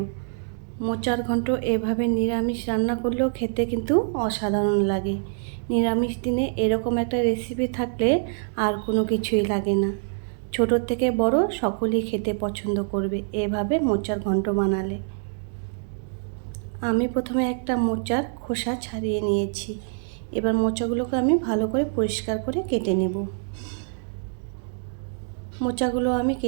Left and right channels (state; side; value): silent; left; digital silence